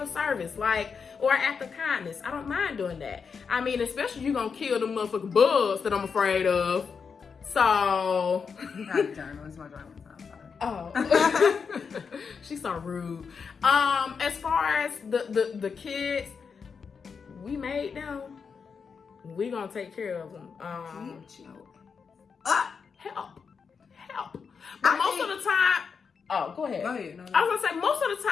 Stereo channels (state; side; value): quieter; right; 5.8 dB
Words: service, or an act of kindness. I don't mind doing that. I mean, especially you gonna kill the motherfucking bugs that I'm afraid of. So. Not a journal, it's my journal. Oh. She's so rude. As far as the kids, we made them. We gonna take care of them. Help. But most of the time, go ahead. Go ahead. No. I was gonna say, most of the